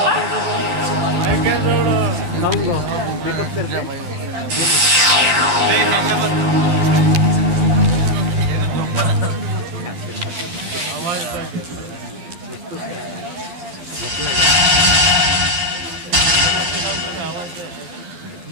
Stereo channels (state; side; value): late; left; 12 ms